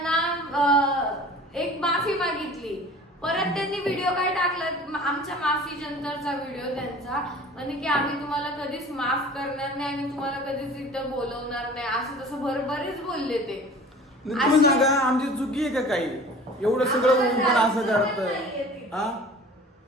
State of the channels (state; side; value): normal; both; correlation 0.43